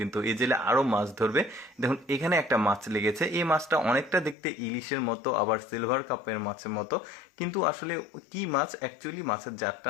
এই জেলে আরো মাছ ধরবে। দেখুন এখানে একটা মাছ লেগেছে। এই মাছটা অনেকটা দেখতে ইলিশের মতো, আবার সিলভার কাপের মাছের মতো, কিন্তু আসলে কি মাছ অ্যাকচুয়ালি, মাছের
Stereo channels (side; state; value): right; drops out; at 4.4 s